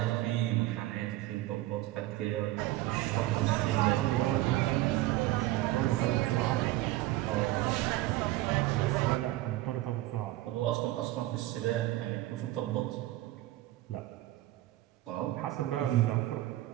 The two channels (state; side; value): quieter; left; 16.7 dB